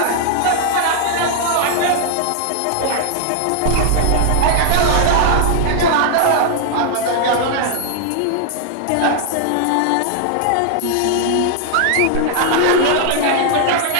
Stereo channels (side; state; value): both; different; correlation -0.01